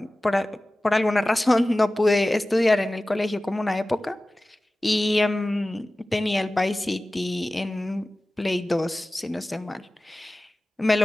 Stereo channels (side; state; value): both; normal; correlation 0.97